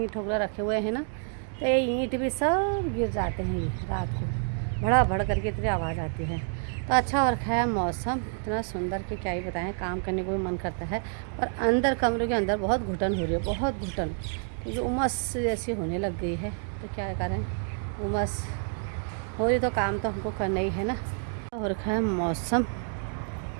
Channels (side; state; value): left; silent; 58 dB below the other